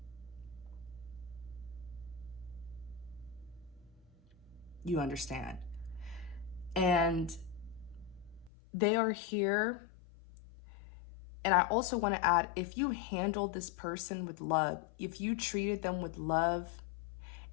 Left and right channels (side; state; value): right; drops out; at 8.5 s